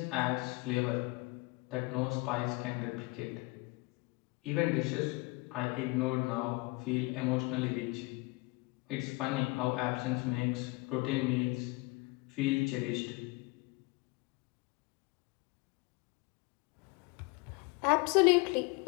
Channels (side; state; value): right; quieter; 26.1 dB